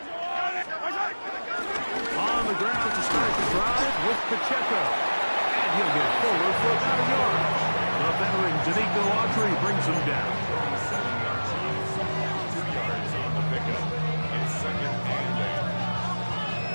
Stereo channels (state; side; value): inverted; both; correlation -1.00